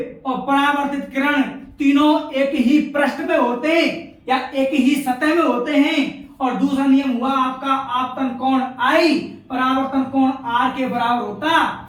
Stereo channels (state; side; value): identical; both; correlation 1.00